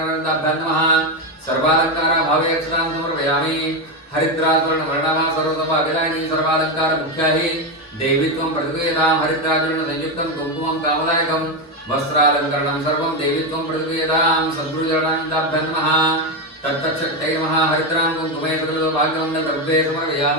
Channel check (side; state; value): both; normal; correlation 0.10